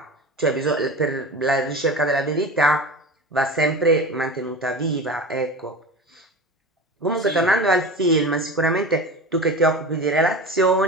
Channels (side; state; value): both; normal; correlation 0.31